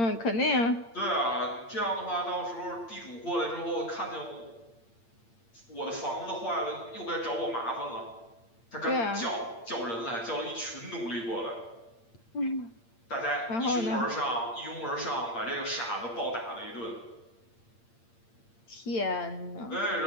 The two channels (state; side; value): late; right; 8.7 ms